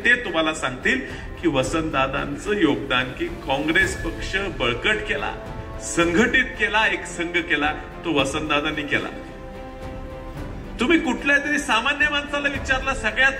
तुम्हाला सांगतील की वसंतदादांचं योगदान की काँग्रेस पक्ष बळकट केला, संघटित केला, एक संघ केला, तो वसंतदादांनी केला. तुम्ही कुठल्या तरी सामान्य माणसाला विचारला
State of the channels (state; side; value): identical; both; correlation 1.00